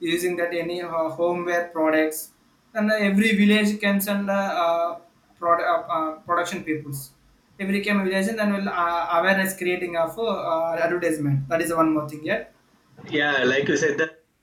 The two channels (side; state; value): both; identical; correlation 1.00